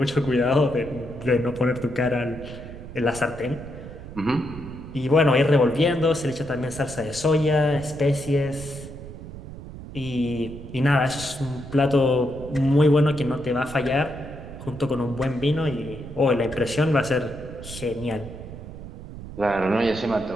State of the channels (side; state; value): right; noise; rumble, 13 dB below the sound